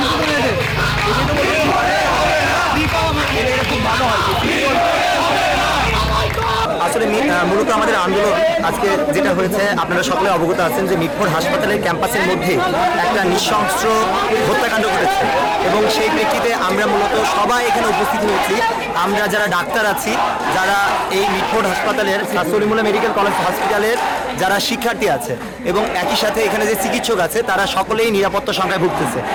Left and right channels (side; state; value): both; identical; correlation 1.00